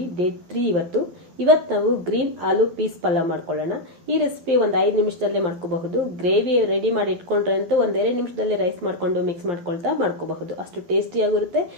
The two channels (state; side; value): late; left; 11 ms